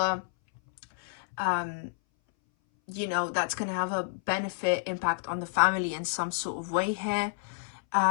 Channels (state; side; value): silent; right; 58 dB below the other